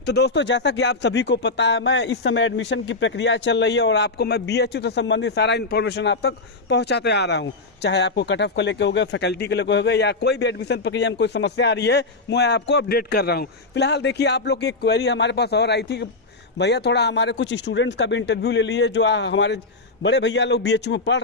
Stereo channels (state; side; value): quieter; right; 3.4 dB